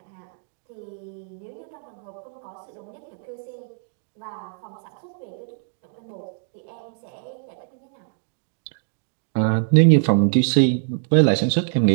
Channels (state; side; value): silent; left; digital silence